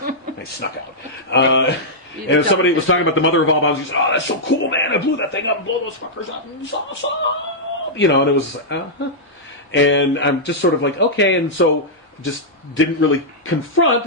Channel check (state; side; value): normal; both; correlation -0.09